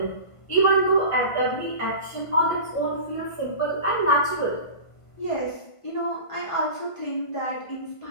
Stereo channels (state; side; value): late; right; 1.5 ms